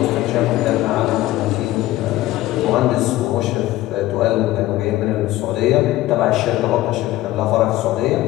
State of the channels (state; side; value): quieter; right; 16.0 dB